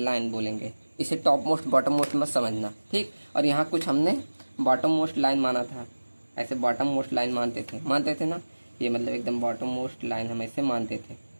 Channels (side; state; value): both; inverted; correlation -1.00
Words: बोलेंगे। इसे टॉप मोस्ट बॉटम मोस्ट मत समझना। ठीक, और यहाँ कुछ हमने बॉटम मोस्ट लाइन माना था, ऐसे बॉटम मोस्ट लाइन मानते थे ना, ये मतलब एकदम बॉटम मोस्ट लाइन हम ऐसे मानते थे।